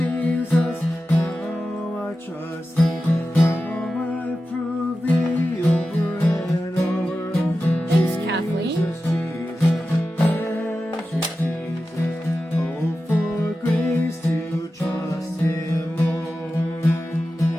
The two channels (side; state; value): both; normal; correlation 0.93